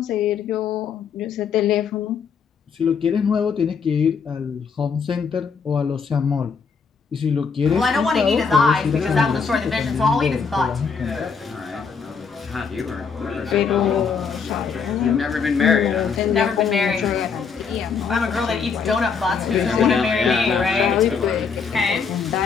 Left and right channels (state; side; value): quieter; right; 5.8 dB